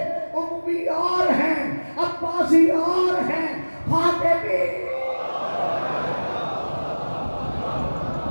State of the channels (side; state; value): both; inverted; correlation -1.00